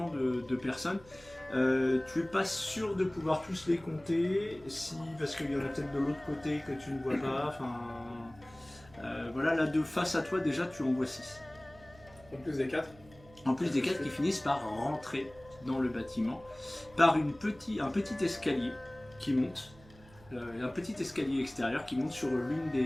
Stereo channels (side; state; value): right; noise; hum, 23 dB below the sound